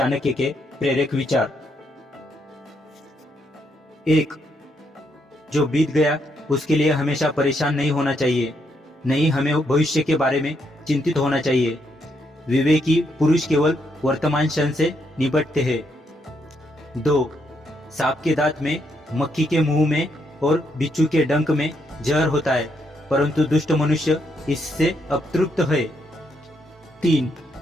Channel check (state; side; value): normal; both; correlation 0.77